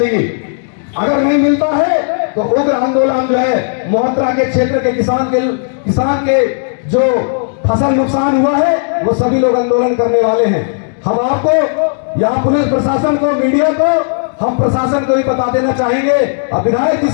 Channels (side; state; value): right; silent; digital silence